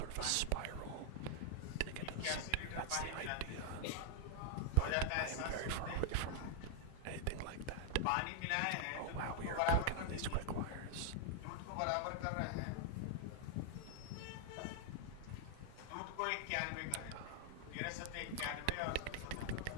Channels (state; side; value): different; both; correlation 0.00